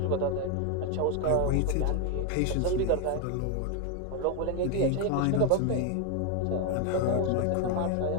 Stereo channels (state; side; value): different; both; correlation 0.01